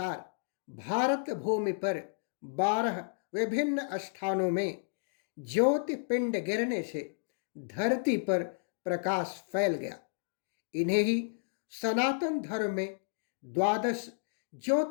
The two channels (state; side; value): silent; right; digital silence